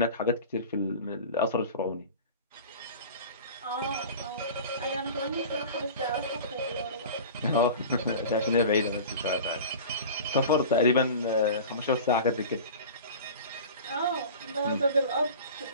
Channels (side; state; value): both; inverted; correlation -0.37